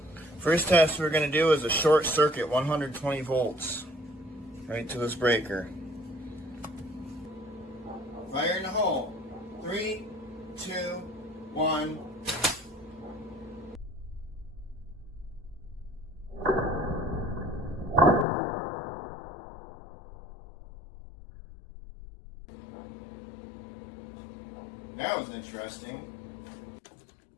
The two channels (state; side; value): drops out; right; at 18.2 s